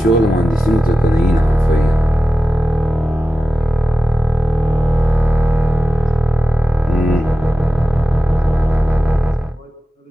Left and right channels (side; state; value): both; normal; correlation 0.94